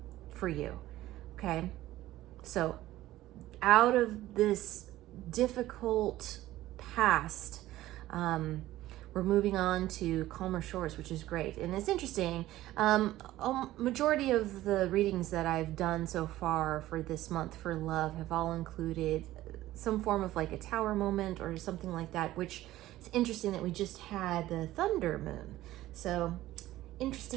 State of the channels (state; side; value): quieter; left; 15.5 dB